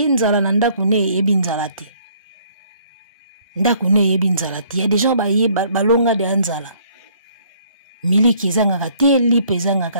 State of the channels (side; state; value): both; inverted; correlation -0.62